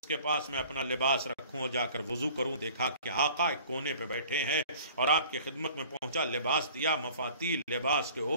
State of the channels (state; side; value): inverted; both; correlation -0.49